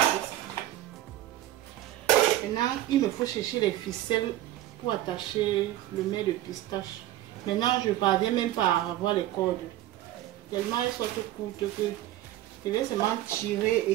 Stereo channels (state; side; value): quieter; left; 14.4 dB